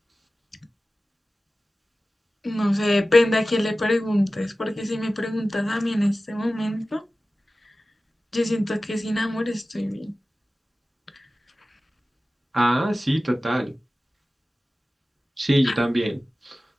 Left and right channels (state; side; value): normal; both; correlation 0.96